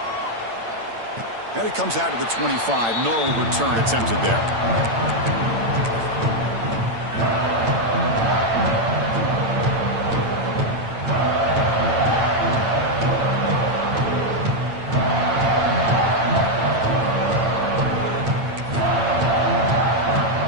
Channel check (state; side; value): late; left; 8.8 ms